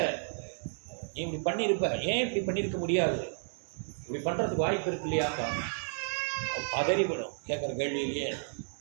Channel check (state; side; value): silent; left; digital silence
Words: நீ இப்படி பண்ணியிருப்ப, ஏன் இப்படி பண்ணியிருக்க முடியாது, இப்படி பண்ணுறதுக்கு வாய்ப்பு இருக்கு இல்லையாப்பா. பதறிவிடும் கேட்குற கேள்வியிலேயே.